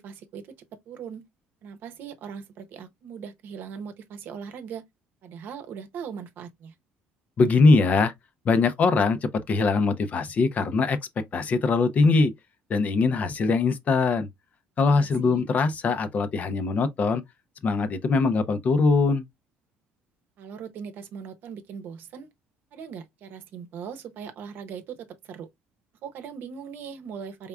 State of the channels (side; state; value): right; quieter; 3.4 dB